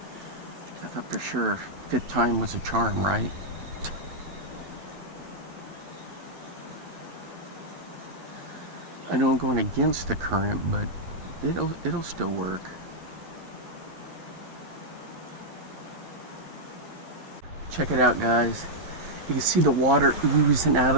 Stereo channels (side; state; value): left; late; 12 ms